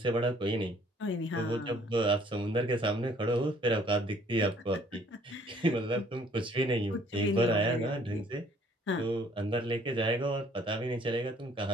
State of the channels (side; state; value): both; normal; correlation 0.60